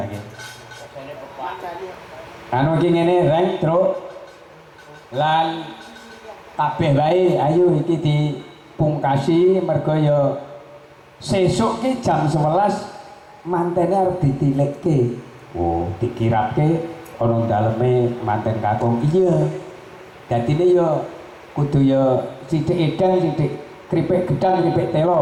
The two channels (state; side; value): identical; both; correlation 1.00